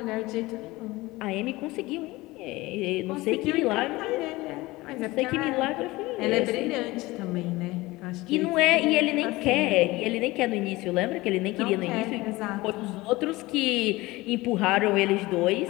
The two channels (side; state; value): right; quieter; 20.3 dB